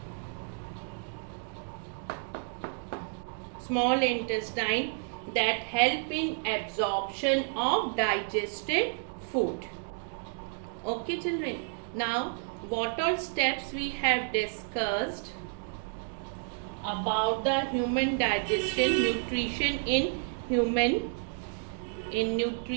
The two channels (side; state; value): left; silent; 57 dB below the other